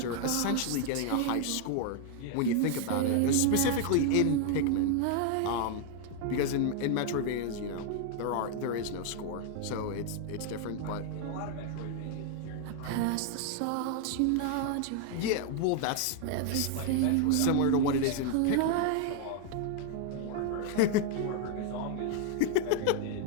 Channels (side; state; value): both; different; correlation 0.00